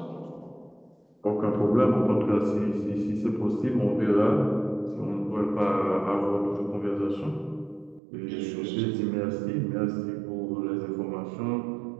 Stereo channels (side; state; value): left; drops out; at 8.0 s